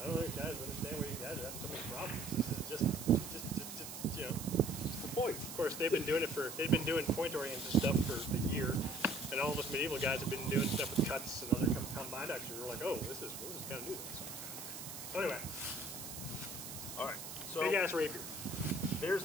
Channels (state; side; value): noise; right; hiss, 9 dB below the sound